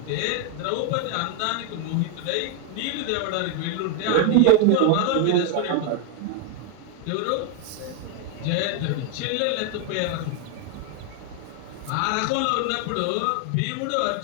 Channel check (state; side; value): different; both; correlation 0.00